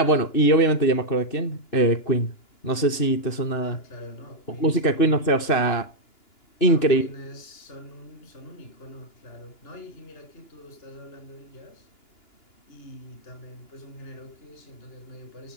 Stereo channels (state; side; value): late; right; 2.9 ms